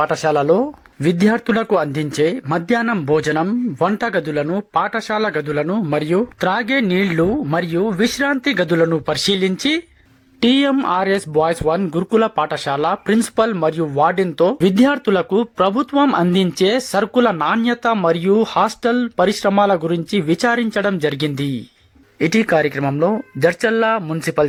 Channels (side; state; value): both; identical; correlation 1.00